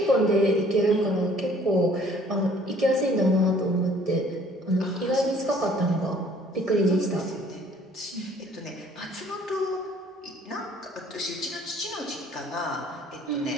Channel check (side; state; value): both; normal; correlation 0.56